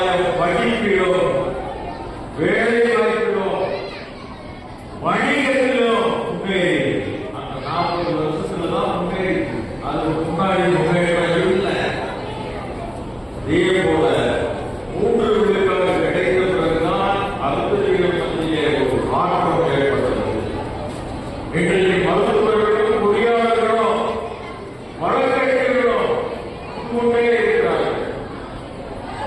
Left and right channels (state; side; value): identical; both; correlation 1.00